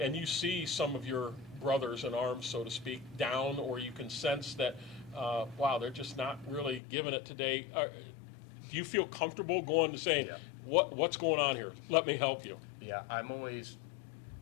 you see some of your brothers in arms, so to speak, down, or you can sense that, wow, they're just not really giving it today. Do you feel comfortable going to saying, Yeah. what's going on here? Let me help you. Yeah, I'm always,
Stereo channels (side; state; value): right; drops out; at 6.8 s